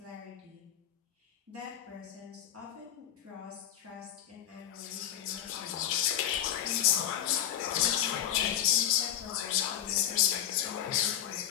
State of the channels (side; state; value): right; quieter; 10.5 dB